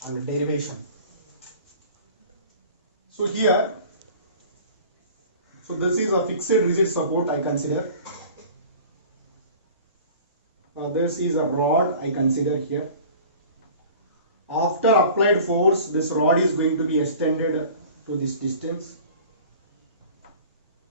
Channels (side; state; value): both; inverted; correlation -0.43